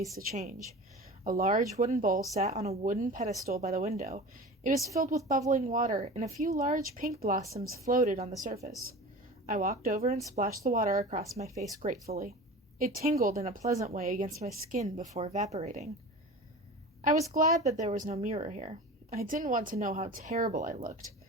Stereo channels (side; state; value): both; normal; correlation 0.35